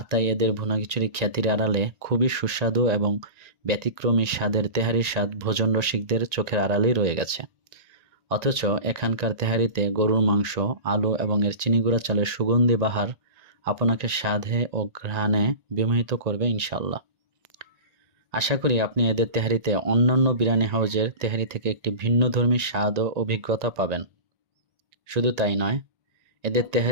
তাই এদের ভুনা খিচুড়ি খ্যাতির আড়ালে খুবই সুস্বাদু এবং ব্যতিক্রমী স্বাদের তেহারির স্বাদ ভোজন রসিকদের চোখের আড়ালেই রয়ে গেছে। অথচ এখানকার তেহারিতে গরুর মাংস, আলু এবং এর চিনিগুড়া চালের সুগন্ধি বাহার আপনাকে স্বাদে ও ঘ্রাণে বিমোহিত করবে ইনশাল্লাহ। আশা করি আপনি এদের তেহারিতে অন্যান্য বিরিয়ানি হাউসের তেহারি থেকে একটি ভিন্নধর্মী স্বাদ ও অভিজ্ঞতা পাবেন। শুধু তাই নয়, এদের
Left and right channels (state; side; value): late; left; 1.9 ms